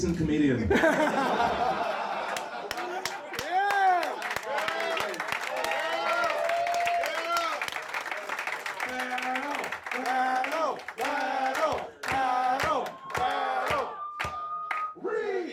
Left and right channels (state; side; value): identical; both; correlation 1.00